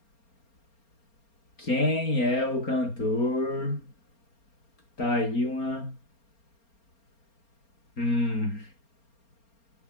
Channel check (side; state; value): right; late; 4.3 ms